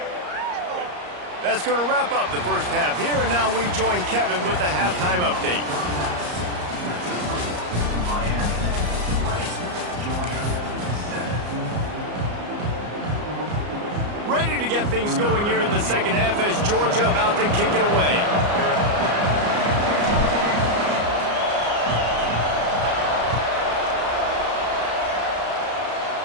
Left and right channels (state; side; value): late; left; 34 ms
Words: That's going to wrap up the first half here, and now we join Kevin with the halftime update. Ready to get things going here in the second half as Georgia about to kick it away.